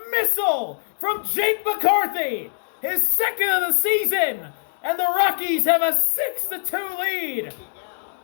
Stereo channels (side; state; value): right; silent; digital silence